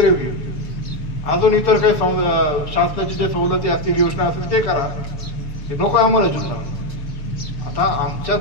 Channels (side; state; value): right; late; 6.8 ms